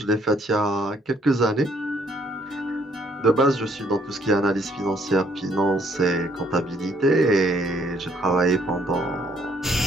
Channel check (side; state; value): both; normal; correlation 0.65